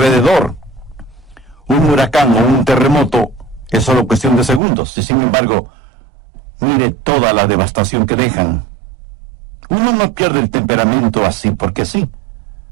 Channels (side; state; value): left; drops out; at 4.6 s